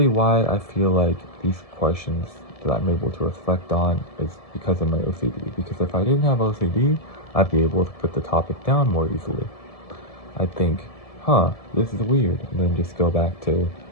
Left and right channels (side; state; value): right; late; 1.7 ms